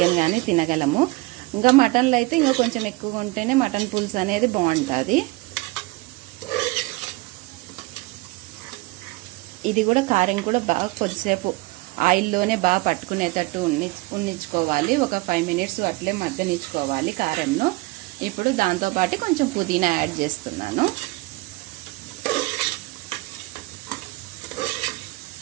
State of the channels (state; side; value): quieter; left; 22.7 dB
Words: కానీ తినగలము. ఇంకా మటన్లో అయితే ఇంకా కొంచెం ఎక్కువగా ఉంటేనే మటన్ పులుసు అనేది బాగుంటుంది. ఇది కూడా కారం కూడా బాగా కొద్దిసేపు ఆయిల్లోనే బాగా పట్టుకునేటట్టు ఉన్నించుకోవాలి. ఒక 5 minutes అట్లే మగ్గనిచ్చుకోవాలి కారంలో. ఇప్పుడు దాంతోపాటు కొంచెం పుదీనా యాడ్ చేస్తున్నాను.